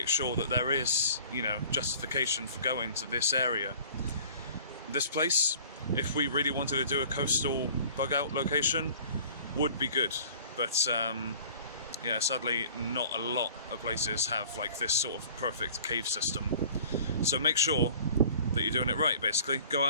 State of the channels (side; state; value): both; inverted; correlation -0.48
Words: sure that there is, justification for going to this area. This place, if we really wanted to do a coastal bug out location, would be good, but yeah, sadly not a lot of places have like this sort of perfect cave system. So make sure that you're doing it right, basically. Go